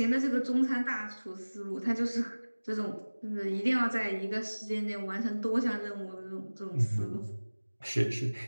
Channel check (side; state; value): both; inverted; correlation -1.00